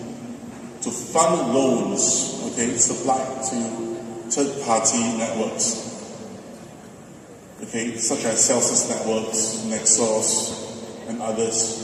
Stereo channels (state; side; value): identical; both; correlation 1.00